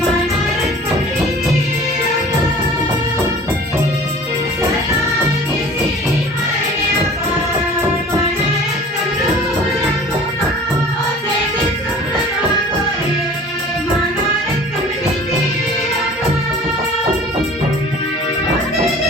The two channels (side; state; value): both; normal; correlation 0.45